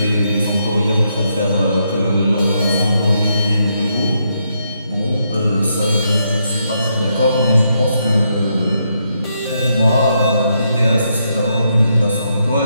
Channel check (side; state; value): both; inverted; correlation -0.79